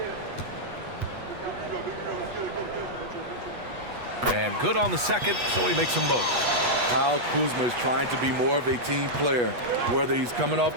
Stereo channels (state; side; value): late; left; 8.2 ms